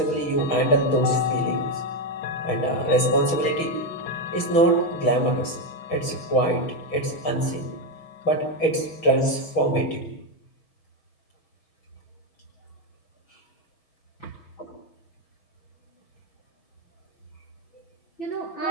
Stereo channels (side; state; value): right; late; 6.2 ms